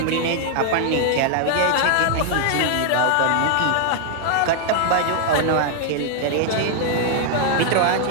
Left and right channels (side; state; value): both; different; correlation 0.00